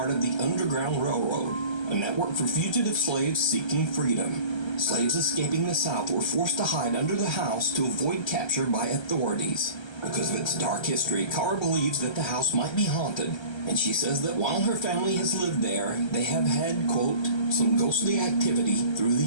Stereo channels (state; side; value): late; right; 1.3 ms